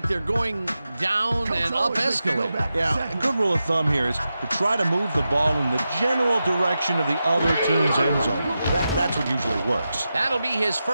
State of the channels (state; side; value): inverted; both; correlation -0.90